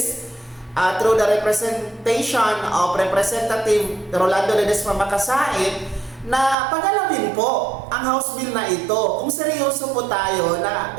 through the representation of Representative Rolando Ledesma Makasait na pagalawin po ang House Bill na ito. Kung seryoso po tayo na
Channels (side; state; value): left; drops out; at 6.6 s